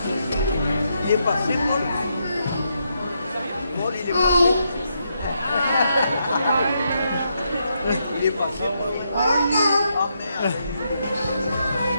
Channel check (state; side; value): inverted; both; correlation -0.80